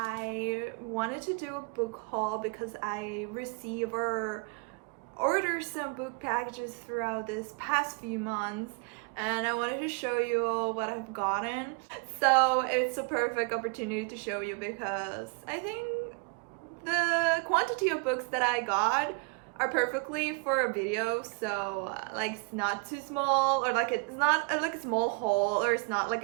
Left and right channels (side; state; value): left; quieter; 32.1 dB